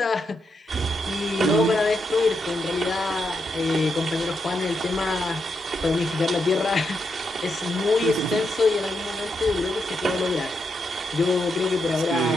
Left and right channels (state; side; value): normal; both; correlation 0.82